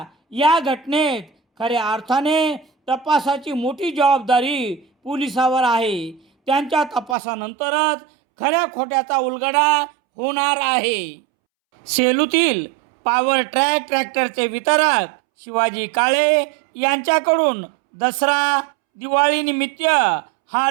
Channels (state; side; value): drops out; left; at 7.2 s